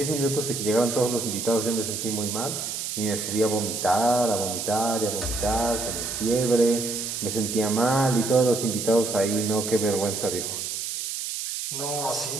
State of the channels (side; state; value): right; noise; hiss, 4 dB below the sound